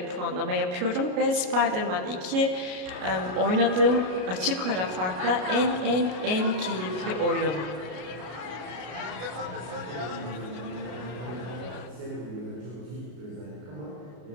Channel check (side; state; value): left; late; 33 ms